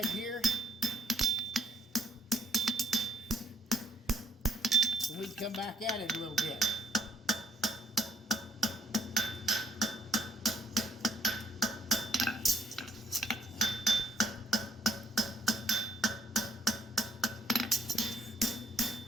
here. And we can come back at it a little bit.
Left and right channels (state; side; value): normal; both; correlation 0.66